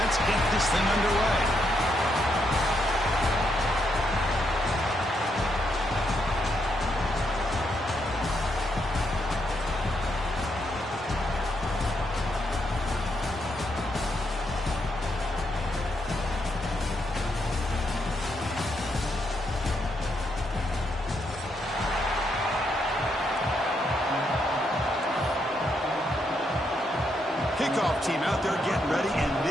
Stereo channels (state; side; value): normal; both; correlation 0.78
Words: get this thing underway. Kickoff team out there getting ready, and